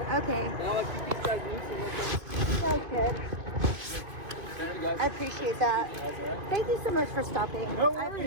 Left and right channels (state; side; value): late; left; 2.6 ms